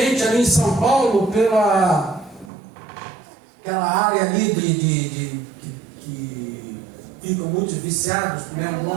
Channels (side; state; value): left; drops out; at 2.5 s